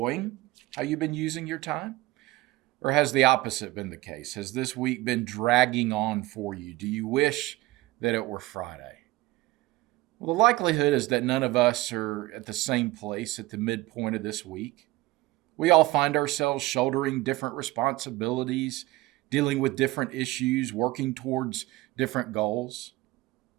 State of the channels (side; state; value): left; quieter; 18.7 dB